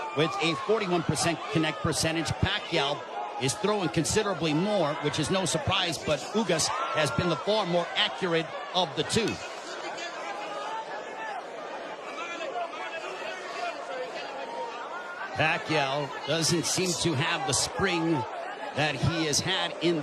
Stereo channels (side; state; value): both; identical; correlation 1.00